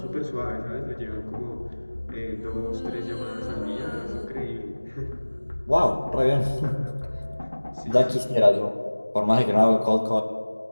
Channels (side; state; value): both; inverted; correlation -1.00